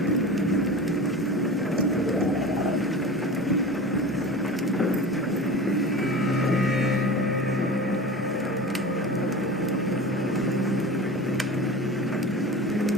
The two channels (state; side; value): normal; both; correlation 0.33